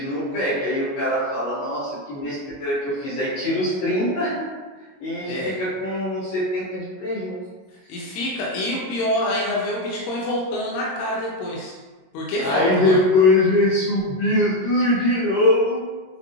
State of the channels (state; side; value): late; right; 22 ms